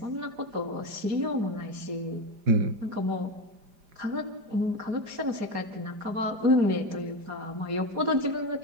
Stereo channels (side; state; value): left; late; 4.9 ms